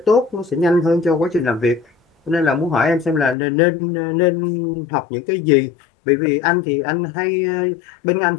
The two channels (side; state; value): right; drops out; at 3.4 s